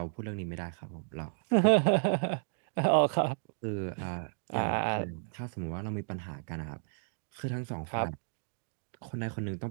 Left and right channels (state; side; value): silent; left; digital silence